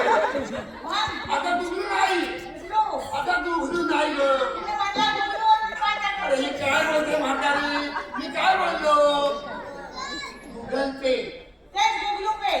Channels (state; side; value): identical; both; correlation 1.00